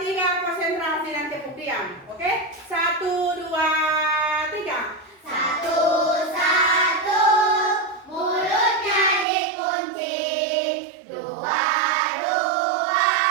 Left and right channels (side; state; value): left; drops out; at 9.2 s